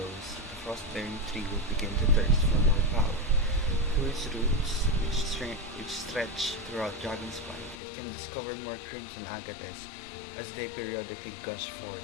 the frost-bearing tree will begin to thirst for more power. Through its roots, which stretch throughout Dragonspine, it can discover more crimson agates as they periodically gush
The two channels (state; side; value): drops out; right; at 7.8 s